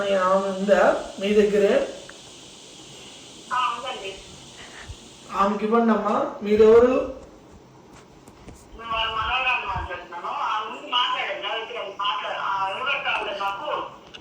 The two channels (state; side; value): identical; both; correlation 1.00